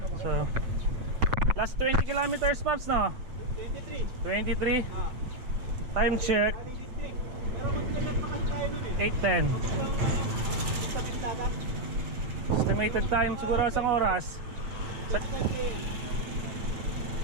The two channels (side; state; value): left; late; 8.4 ms